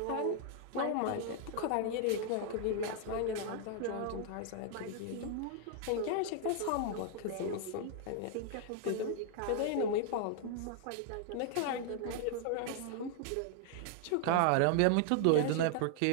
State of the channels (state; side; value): different; both; correlation 0.00